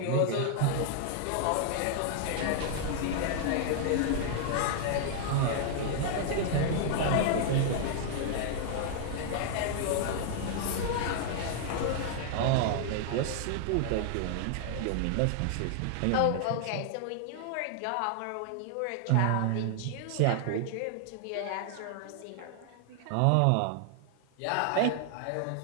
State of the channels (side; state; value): both; different; correlation 0.00